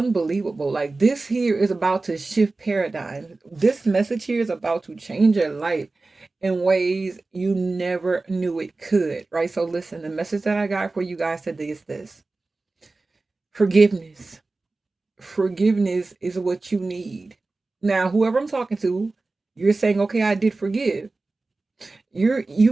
Like this here is about to shift paradigm. This message here is about to change your life in ways you never knew it could, right? So listen, the message that I got for you guys today is this: forgiveness. Forgiveness is what you need. Now, whoever I'm talking to, you're saying, okay, I did forgive. You've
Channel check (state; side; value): quieter; left; 3.4 dB